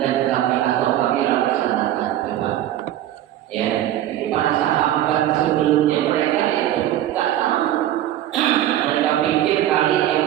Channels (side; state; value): left; quieter; 12.7 dB